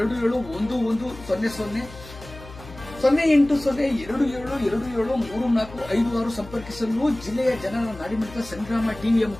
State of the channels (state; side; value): noise; left; hum, 17 dB below the sound